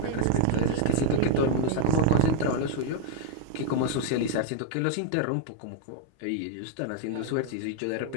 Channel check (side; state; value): both; different; correlation 0.00